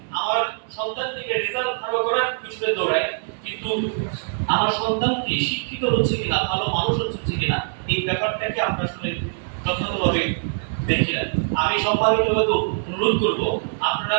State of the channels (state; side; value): silent; left; digital silence